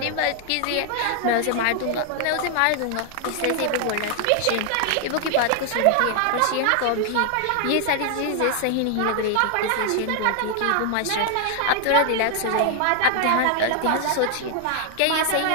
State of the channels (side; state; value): both; different; correlation 0.00